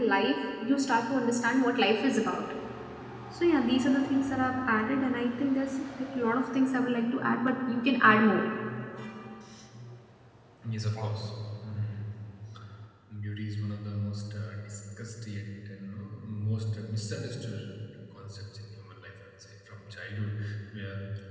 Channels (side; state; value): both; identical; correlation 1.00